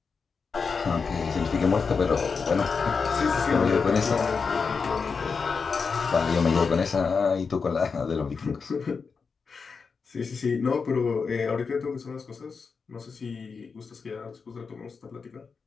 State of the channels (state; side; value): quieter; right; 5.2 dB